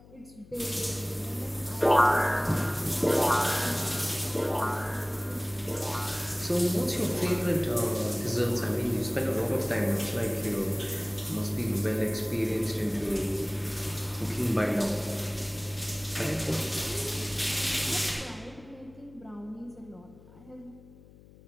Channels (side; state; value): left; noise; hum, 23 dB below the sound